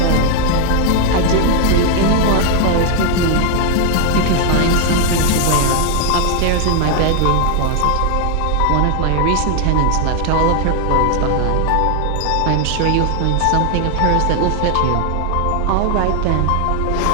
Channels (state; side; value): different; both; correlation 0.00